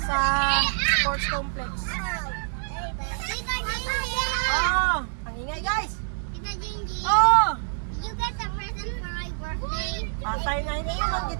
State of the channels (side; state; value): left; silent; digital silence